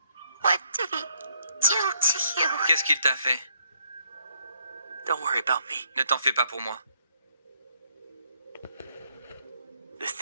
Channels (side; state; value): both; inverted; correlation -0.70